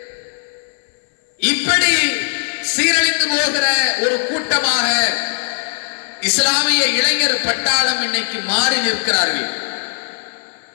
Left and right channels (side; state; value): right; silent; 59 dB below the other